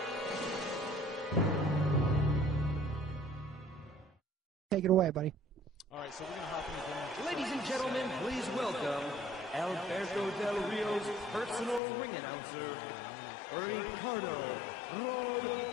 Take it away, buddy. All right, so we're going to hop into Ladies and gentlemen, please welcome Alberto Del Rio's personal ring announcer, Ricardo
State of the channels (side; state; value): right; drops out; at 11.8 s